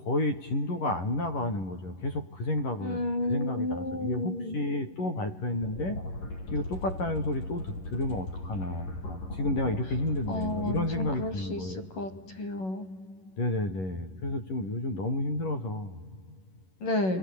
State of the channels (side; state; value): right; late; 11 ms